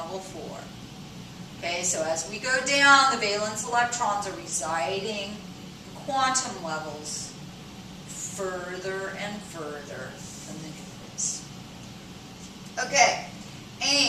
4. Okay, so as we go down, the valence electrons are residing in quantum levels further and further from the nucleus. Okay,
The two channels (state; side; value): identical; both; correlation 1.00